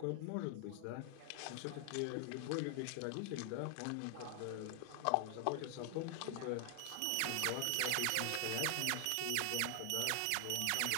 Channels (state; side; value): different; both; correlation 0.00